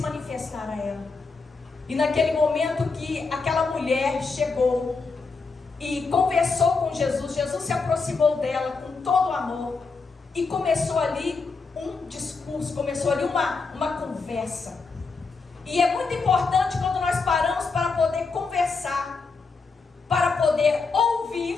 a ela. E naquele momento que aquela mulher chegou e conversou com Jesus, Jesus se aproximou dela com todo o amor e começou ali um discurso, começou ali uma conversa. E é muito importante quando nós paramos para poder conversar, para poder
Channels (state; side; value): quieter; right; 4.4 dB